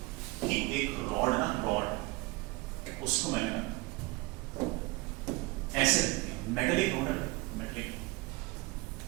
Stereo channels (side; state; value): left; quieter; 24.2 dB